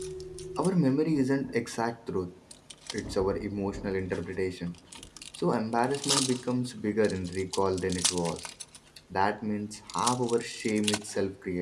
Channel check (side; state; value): both; identical; correlation 1.00